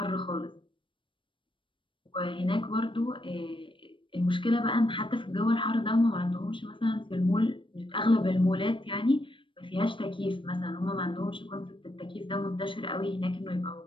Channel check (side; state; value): right; late; 0.25 ms